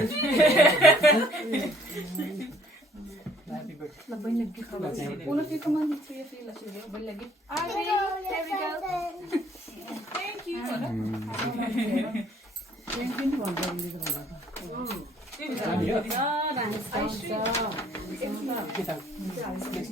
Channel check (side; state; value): both; normal; correlation 0.60